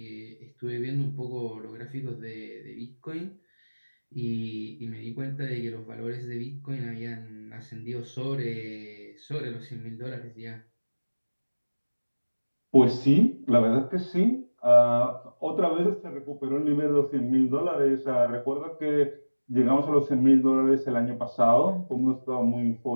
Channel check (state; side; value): inverted; both; correlation -1.00